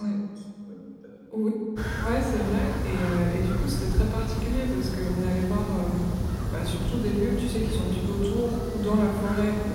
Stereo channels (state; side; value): identical; both; correlation 1.00